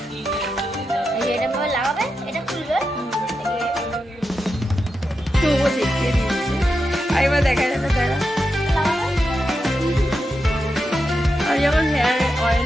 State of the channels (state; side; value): normal; both; correlation 0.87